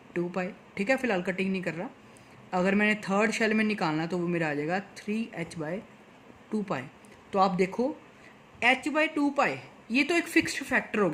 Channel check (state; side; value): identical; both; correlation 1.00